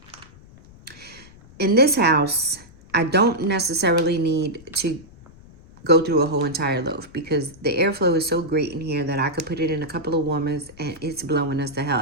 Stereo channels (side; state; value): left; noise; rumble, 22 dB below the sound